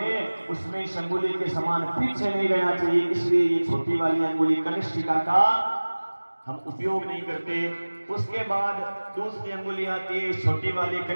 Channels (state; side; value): inverted; both; correlation -1.00